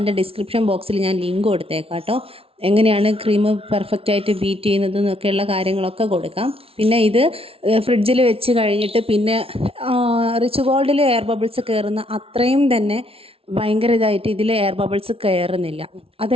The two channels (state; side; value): late; left; 0.27 ms